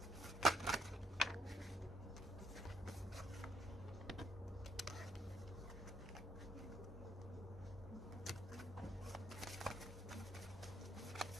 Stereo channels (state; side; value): normal; both; correlation 0.73